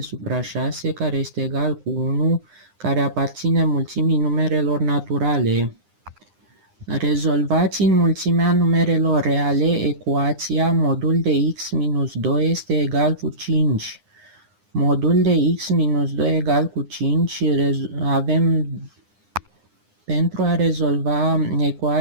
supra 6, care este egal cu 1, care aparține mulțimii numerelor naturale. Rezolvați în mulțimea numerelor reale ecuația modul de x minus 2 este egal cu 5. Modul de x minus 2 egal cu 5 avem, pentru a rezolva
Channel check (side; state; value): left; late; 9.8 ms